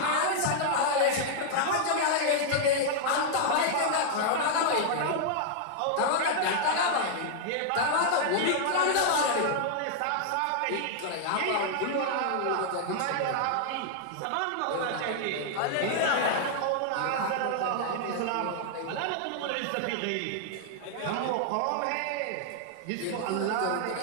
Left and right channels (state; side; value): different; both; correlation -0.01